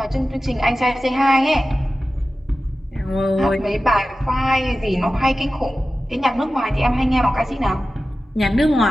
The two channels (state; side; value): normal; both; correlation 0.95